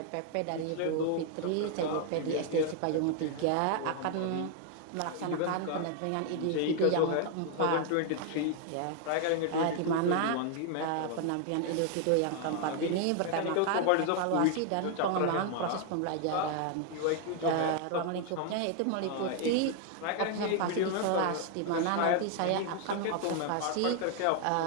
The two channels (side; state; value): both; different; correlation 0.00